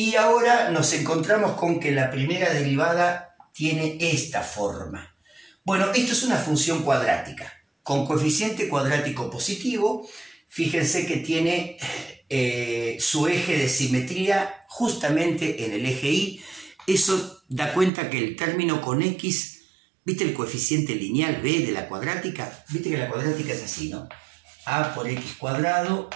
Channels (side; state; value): left; drops out; at 17.9 s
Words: ahora nos encontramos con que la primera derivada tiene esta forma. Bueno, esto es una función cuadrática, con coeficiente cuadrático positivo. Fíjense que tiene su eje de simetría justamente en el eje Y. Eso da cuenta que el término con x, ¿viste el coeficiente lineal b de la cuadrática? Viste que la cuadrática es así, ¿no? A por x cuadrado